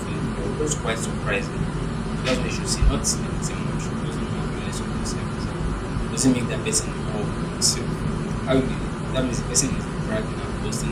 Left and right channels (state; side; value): identical; both; correlation 1.00